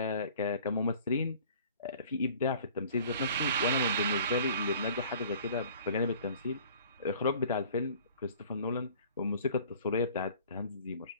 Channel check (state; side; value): inverted; both; correlation -0.49